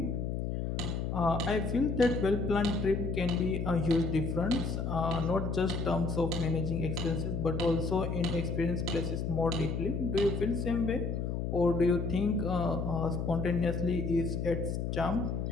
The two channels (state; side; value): noise; left; hum, 2 dB below the sound